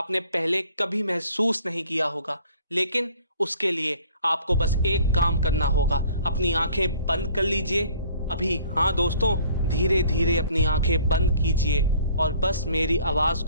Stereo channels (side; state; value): both; inverted; correlation -0.54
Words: पहले कभी महसूस नहीं किया होगा। लेकिन उसके लिए आपको बस एक काम करना होगा, अपनी आंखें बंद कर लीजिए अभी। हाँ दोस्तों, धीरे धीरे अपनी आंखें बंद कीजिए और बस मेरी आवाज